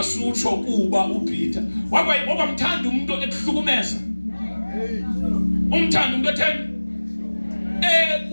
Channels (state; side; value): inverted; both; correlation -1.00